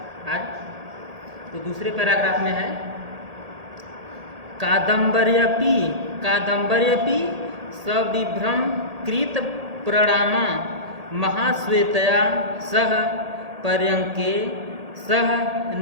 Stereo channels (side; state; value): left; late; 1.8 ms